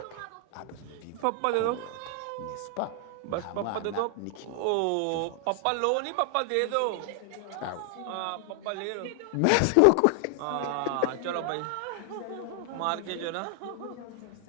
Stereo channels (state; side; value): different; both; correlation 0.00